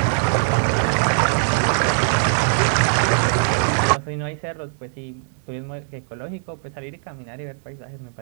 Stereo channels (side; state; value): left; silent; digital silence